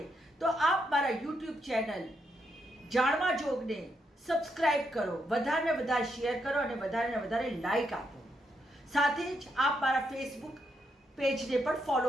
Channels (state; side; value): normal; both; correlation 0.79